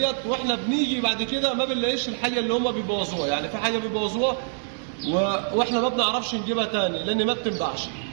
واحنا بنيجي بعد كده ما بنلاقيش الحاجه اللي هم بيبوظوها. يعني في حاجه بيبوظوها واحنا ما بنعرفش نجيبها تاني لان ما بتنباعش،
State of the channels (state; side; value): silent; left; 62 dB below the other